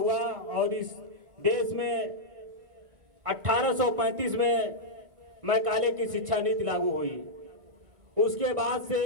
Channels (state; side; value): late; left; 1.9 ms